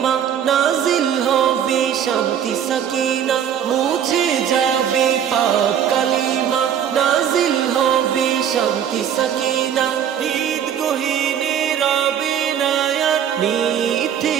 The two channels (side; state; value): left; quieter; 9.0 dB